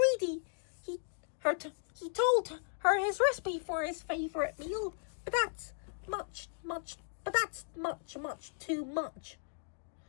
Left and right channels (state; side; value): silent; right; digital silence